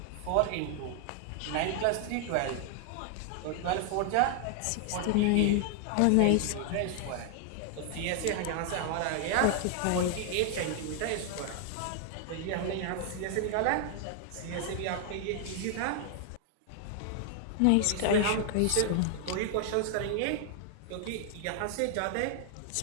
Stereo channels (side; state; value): both; different; correlation 0.00